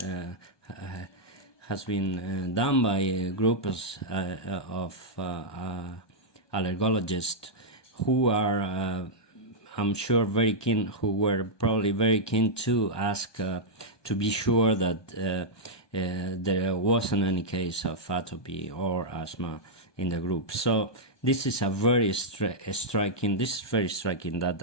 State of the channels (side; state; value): right; late; 1.2 ms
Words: has been done by a group of allergologists who are, I'm sure, very keen, who were probably very keen to ask to be sure that there wasn't any case of atopy or asthma in the group. So this is a very striking